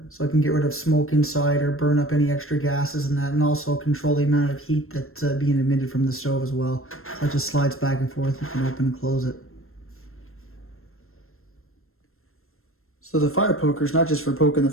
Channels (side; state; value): right; late; 0.62 ms